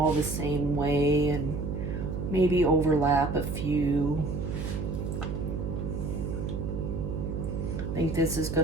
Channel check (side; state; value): right; noise; hum, 3 dB below the sound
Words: the same way and maybe overlap a few. I think this is